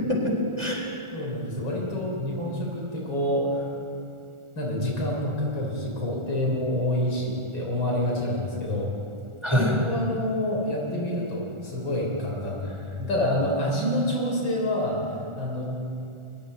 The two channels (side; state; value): left; late; 1.4 ms